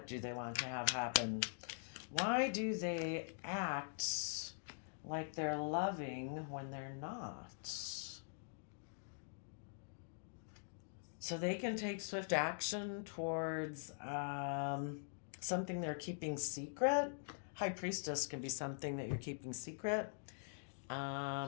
do they want to have happen? Why do they act like they're loving when they're not? So they can take swift action towards something they're keeping secret. High Priestess can be something that you're keeping secret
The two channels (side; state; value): right; silent; digital silence